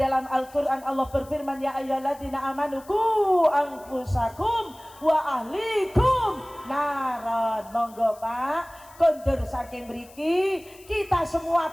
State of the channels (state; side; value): noise; left; hiss, 24 dB below the sound